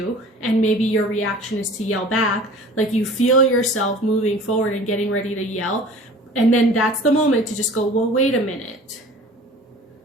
and maybe your reaction is to yell back, like you feel yourself moving forward and getting ready to yell, and then that's the moment to just go, well, wait a minute,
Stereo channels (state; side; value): normal; both; correlation 0.44